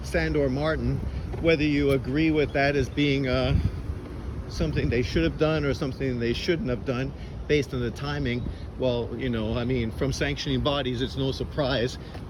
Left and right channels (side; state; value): both; identical; correlation 1.00